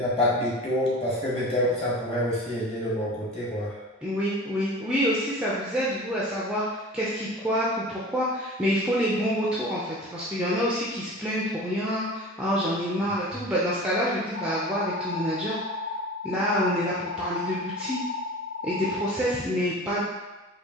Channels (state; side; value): normal; both; correlation 0.37